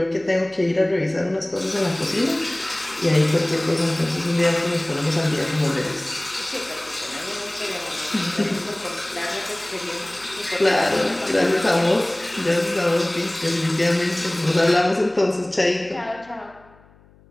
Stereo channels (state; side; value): noise; left; hum, 28 dB below the sound